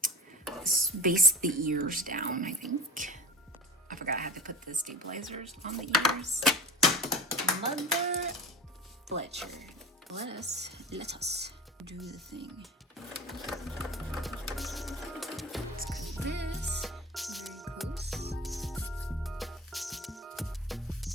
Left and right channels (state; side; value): normal; both; correlation 0.34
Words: let's base the ears down, I think. I forgot I had to put the stabilizers on the ears. Mother Fletcher. Let us do the thing. Let's cut this very close.